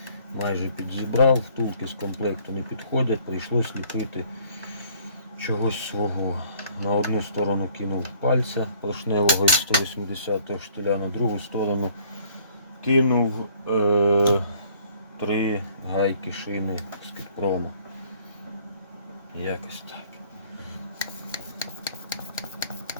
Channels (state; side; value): inverted; both; correlation -0.58